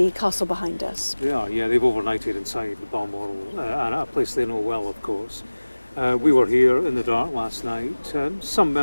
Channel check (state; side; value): inverted; both; correlation -1.00